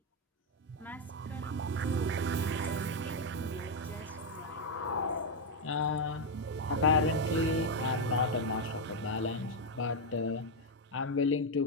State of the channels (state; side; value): normal; both; correlation 0.03